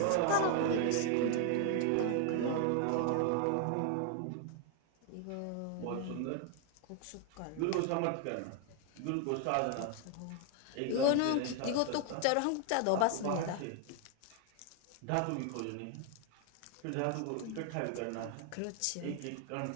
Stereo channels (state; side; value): different; both; correlation 0.00